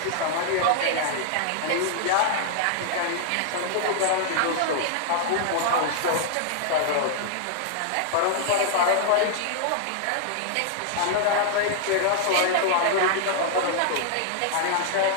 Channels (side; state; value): both; different; correlation -0.01